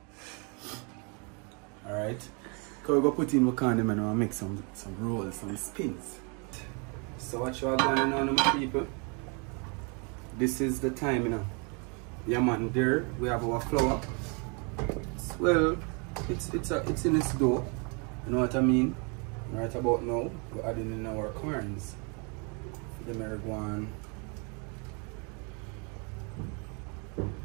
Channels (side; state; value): left; quieter; 34.5 dB